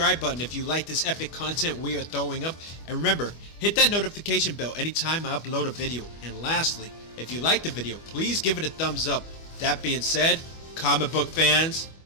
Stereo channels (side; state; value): right; late; 25 ms